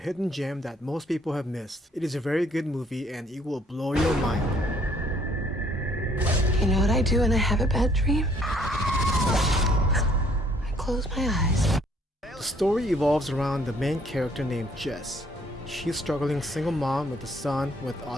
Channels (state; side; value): normal; both; correlation 0.63